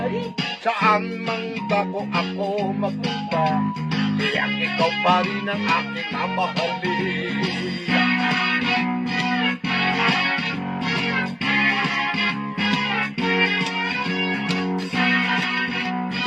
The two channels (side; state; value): both; identical; correlation 1.00